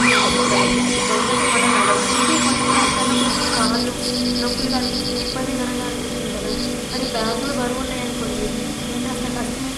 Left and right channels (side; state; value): both; identical; correlation 1.00